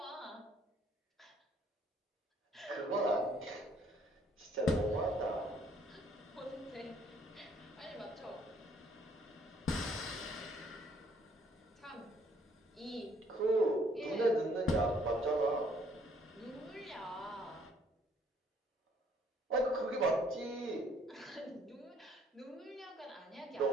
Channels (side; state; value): both; normal; correlation 0.63